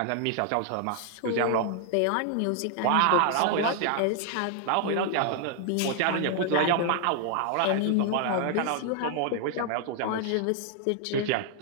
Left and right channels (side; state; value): both; different; correlation 0.00